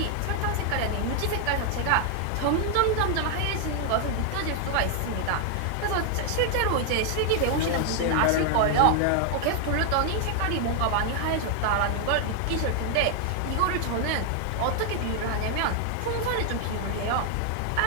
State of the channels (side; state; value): both; different; correlation 0.00